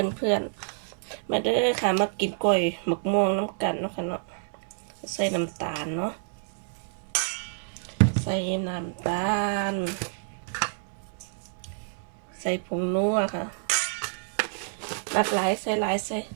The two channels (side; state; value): left; silent; 59 dB below the other